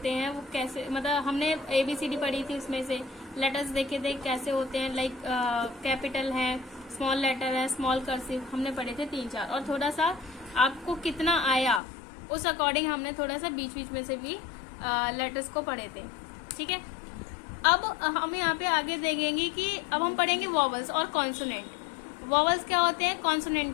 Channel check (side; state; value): right; drops out; at 11.8 s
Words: हैं, वो कैसे, मतलब हमने ABCD पढ़ी थी, उसमें से लेटर्स देखे थे कैसे होते हैं, लाइक कैपिटल है, स्मॉल लेटर है, स्मॉल कर्सिव, हमने पढ़े थे 3-4, और थोड़ा सा आपको कितना आया उस अकॉर्डिंग हमने थोड़ा सा बीच बीच में से भी लेटर्स को पढ़े थे। ठीक है, अब हम यहाँ पे आगे देखेंगे कि अब हम पढ़ेंगे वॉवल्स और कॉन्सोनेंट। वॉवल्स क्या होते हैं, कॉन्सोनेंट